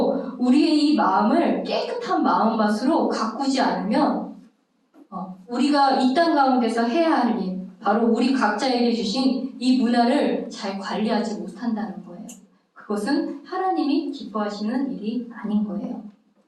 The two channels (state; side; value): identical; both; correlation 1.00